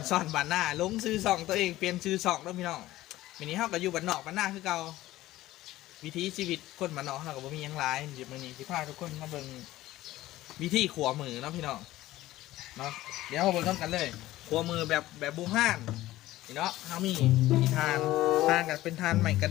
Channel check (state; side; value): quieter; right; 16.0 dB